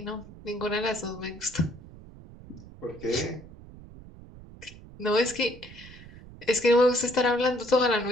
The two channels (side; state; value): right; noise; rumble, 18 dB below the sound